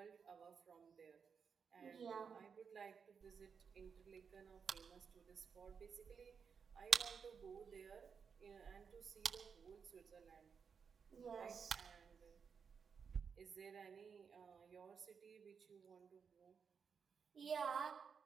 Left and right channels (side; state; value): left; quieter; 6.2 dB